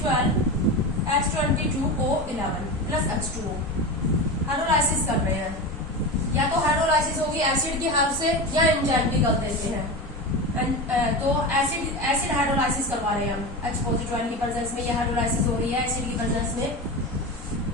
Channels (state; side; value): normal; both; correlation 0.24